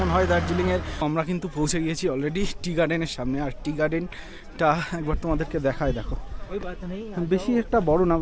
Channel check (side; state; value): both; identical; correlation 1.00